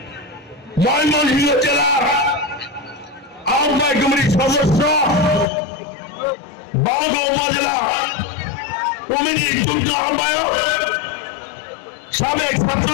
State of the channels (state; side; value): drops out; right; at 5.5 s